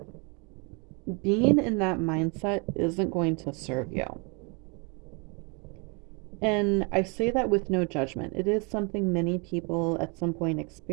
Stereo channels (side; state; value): left; quieter; 32.5 dB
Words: being in that mindset isn't going to serve you. And I say that with no judgment. It is something many people at some point